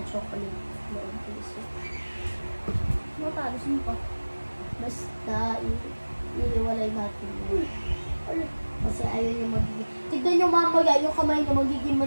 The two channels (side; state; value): both; inverted; correlation -1.00